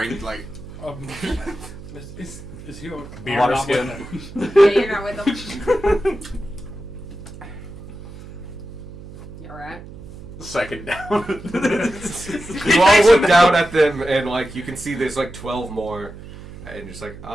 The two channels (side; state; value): right; noise; hum, 15 dB below the sound